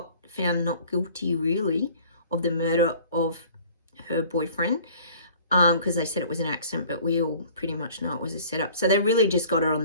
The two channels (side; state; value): both; inverted; correlation -0.50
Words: found not guilty, really, of the murder of her boyfriend. Because they said it was an accident, but we all pretty much know it was a setup. So they really just got her on